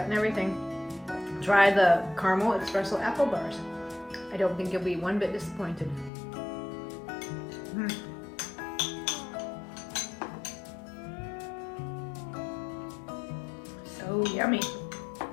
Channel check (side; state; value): right; drops out; at 6.1 s